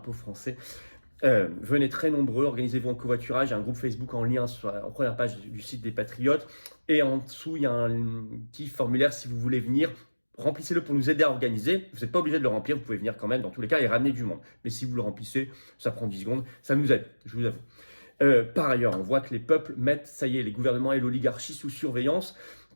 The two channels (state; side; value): inverted; both; correlation -1.00